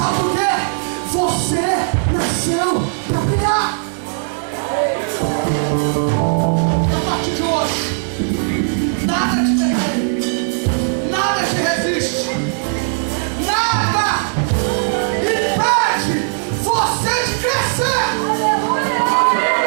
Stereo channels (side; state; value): left; silent; digital silence